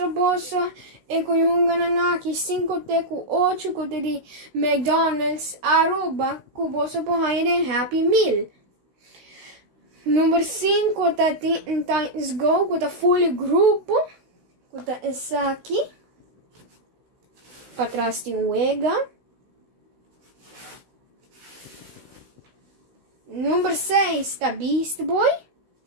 você que eu ganhei aqui 5 teco 8 coisas de McDonald's Aruba que você pode fazer Happy Meal. Número 5 tá Times Go, que tá full grupo, que tá essa aqui. Para trás tem o Ega. Número 6 tá Beast Boy.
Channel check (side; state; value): left; late; 16 ms